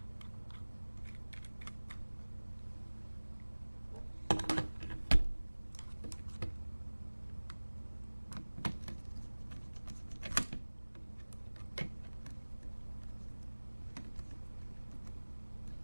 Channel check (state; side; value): inverted; both; correlation -1.00